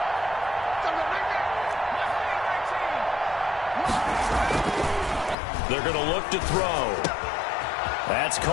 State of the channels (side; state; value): right; drops out; at 5.4 s